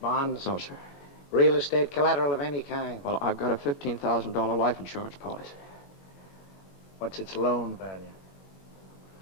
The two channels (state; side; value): late; right; 21 ms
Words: Bonds? No, sir. Real estate collateral of any kind? Well, I've got a $15,000 life insurance policy. What's its loan value?